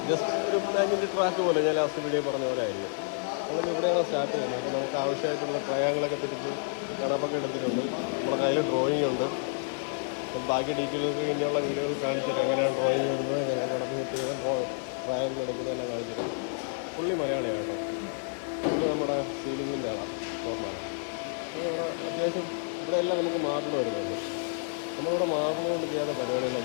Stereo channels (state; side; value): silent; right; digital silence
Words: ജസ്റ്റ് ഒരു ബാങ്കിൻ്റെ ട്രാക്ക് പോലെ ഞാൻ ലാസ്റ്റ് വീഡിയോ പറഞ്ഞ പോലെ ആയിരിക്കും. നമ്മൾ ഇവിടെയാണ് സ്റ്റാർട്ട് ചെയ്യുന്നത്. അപ്പോൾ നമുക്ക് ആവശ്യമായിട്ടുള്ള ട്രയാങ്കിളൊക്കെ തിരിച്ച് കണപ്പൊക്കെ എടുത്തിട്ടുണ്ട്. നമ്മുടെ കയ്യിൽ ഡ്രോയിങ് ഉണ്ട്. ബാക്കി ഡീറ്റെയിൽസ് ഇനിയുള്ള വീഡിയോകൾ കാണിച്ചിട്ട് എങ്ങനെയാണ് ഡ്രോയിങ് ഇടുന്നത്, എങ്ങനെ കണക്ക് സെറ്റ് ചെയ്ത് ട്രയാങ്കിൾ എടുക്കുന്നതെല്ലാം കാണിച്ചിട്ട്. പുള്ളി മലയാളിയാണ്. ഇത് നമ്മുടെ സീലിങ്ങിൻ്റെ ആളാണ്, ഫോർമാനാണ്. അത്യാവശ്യം ഇവിടെ എല്ലാം നമുക്ക് മാർബിൾ വരുന്നുണ്ട്. നമ്മളിവിടെ മാർബിൾ കൊണ്ട് ചെയ്യാത്ത